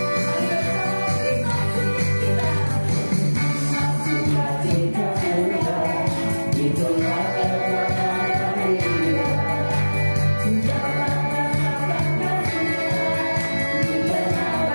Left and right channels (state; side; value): inverted; both; correlation -1.00